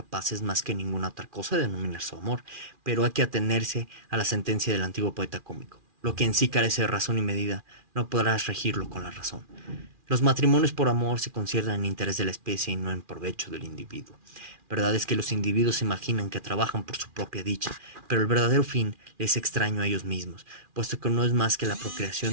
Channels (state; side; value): late; left; 2.4 ms